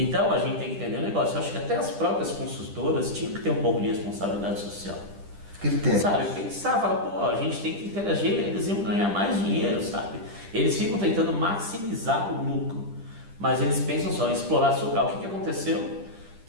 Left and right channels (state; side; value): late; left; 10 ms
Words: a gente tem que entender o negócio. Eu acho que até as próprias construtoras tinham que ter um pouco de responsabilidade social. Critério. Sabe, pensar, falar, a gente tem que interagir, eles iam ganhar mais dinheiro, sabe? Eles ficam tentando maximizar o lucro, mas eles pensam só em explorar seu local. O que aconteceu?